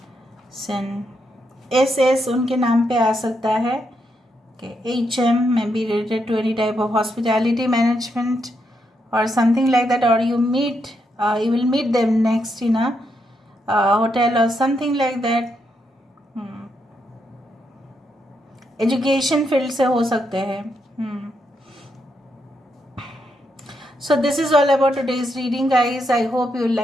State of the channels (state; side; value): normal; both; correlation 0.80